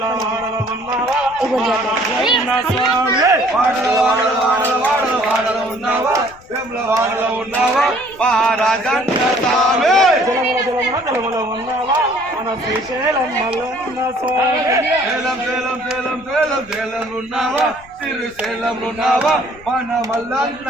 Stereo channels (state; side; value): noise; left; rumble, 24 dB below the sound